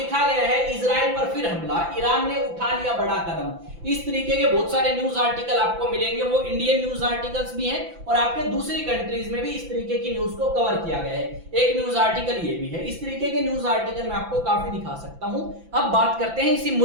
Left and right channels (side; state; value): left; late; 5.9 ms